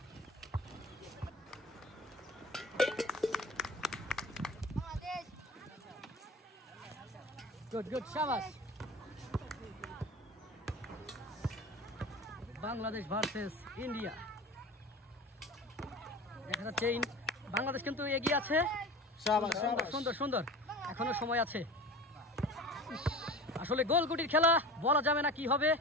Good, good, shabash. Bangladesh versus India. দেখা যাচ্ছে বাংলাদেশ কিন্তু এগিয়ে আছে। শাবাশ সুন্দর শাবাশ সুন্দর সুন্দর, এখনো সময় আছে। আসলে গোলগুটির খেলা, বলা যাবে না কি হবে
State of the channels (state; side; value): normal; both; correlation 0.35